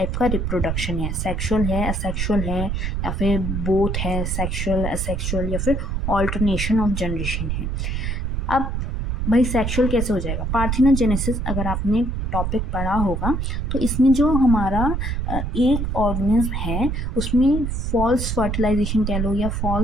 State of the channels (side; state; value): right; noise; rumble, 1 dB below the sound